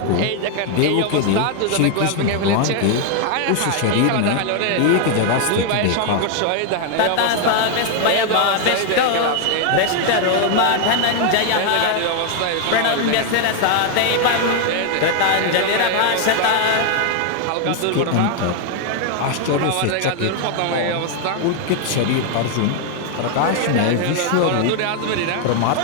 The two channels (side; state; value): both; different; correlation 0.00